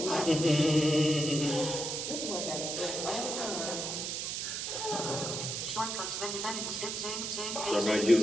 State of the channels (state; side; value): noise; right; hiss, 3 dB below the sound